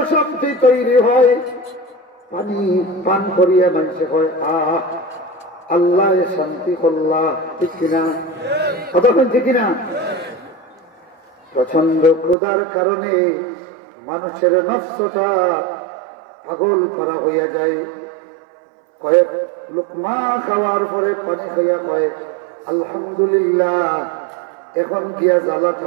শক্তি তৈরি হয়। পানি পান করিয়া মানুষে হয় আহ আল্লাহ শান্তি করলা। ঠিক কিনা? কতক্ষণ ঠিক কিনা? প্রচন্ড ক্ষুধার কারণে মানুষের নফসটা পাগল করা হইয়া যায়। কয়েক লুকমা খাওয়ার পরে পানি খাইয়া কয় আলহামদুলিল্লাহ, এখন গিয়া জ্বালা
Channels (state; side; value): drops out; left; at 12.4 s